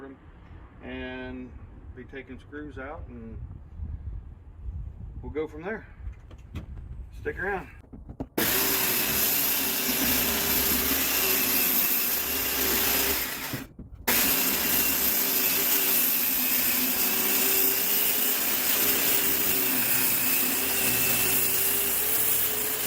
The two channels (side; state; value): both; identical; correlation 1.00